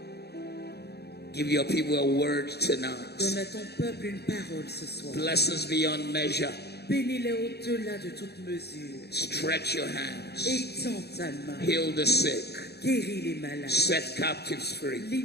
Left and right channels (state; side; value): late; right; 0.48 ms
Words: give your people a word tonight. Blessings beyond measure. Bénis-les au-delà de toute mesure. Stretch your hands. Étends ta main. Heal the sick. Guéris les malades. Set captives free.